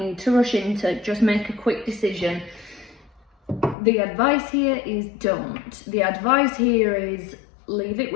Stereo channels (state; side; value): drops out; right; at 3.8 s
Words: to rush into, just make a quick decision. The advice here is don't. The advice here is leave it